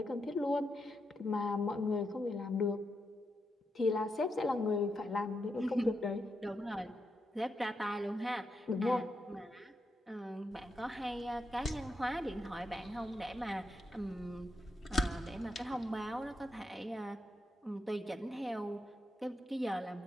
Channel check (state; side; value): normal; both; correlation 0.84